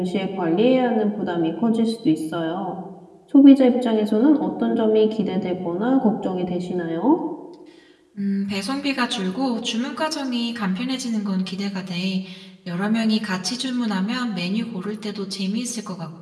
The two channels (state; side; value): identical; both; correlation 1.00